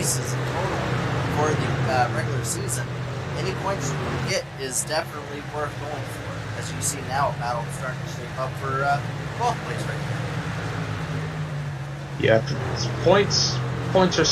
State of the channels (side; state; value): both; identical; correlation 1.00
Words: in total for the regular season, any points you can get is definitely worth going for. As you see now, a battle starting to shape up for 12th place right Yeah, points are